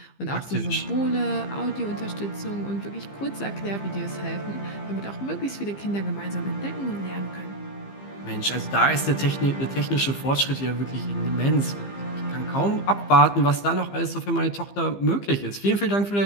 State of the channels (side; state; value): right; late; 15 ms